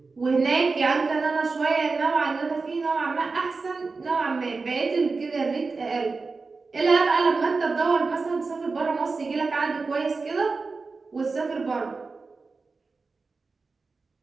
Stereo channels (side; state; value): left; quieter; 4.2 dB